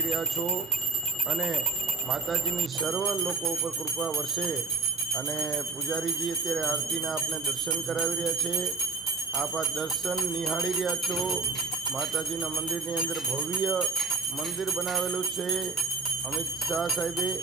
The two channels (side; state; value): left; quieter; 4.1 dB